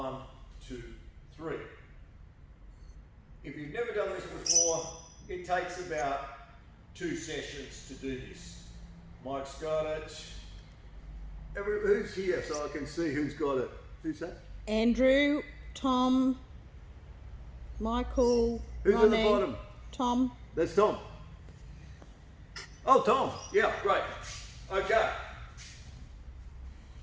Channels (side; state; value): both; identical; correlation 1.00